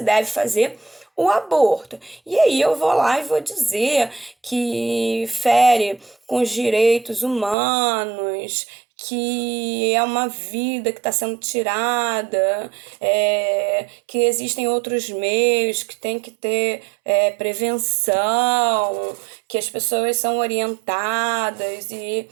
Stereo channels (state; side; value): drops out; left; at 7.6 s